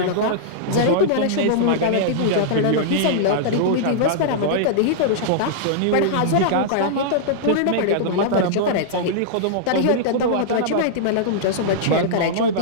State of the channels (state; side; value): different; both; correlation -0.02